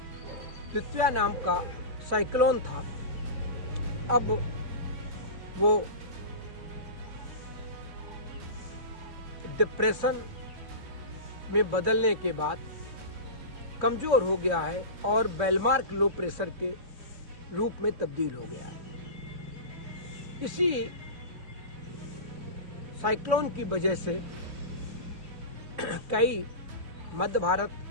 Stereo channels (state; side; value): late; left; 3.2 ms